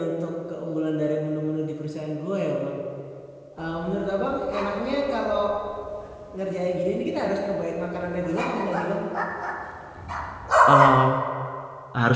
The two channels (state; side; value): identical; both; correlation 1.00